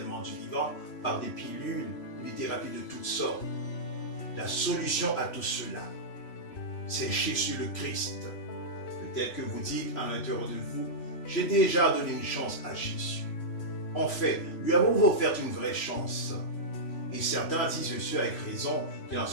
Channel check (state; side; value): late; right; 3.0 ms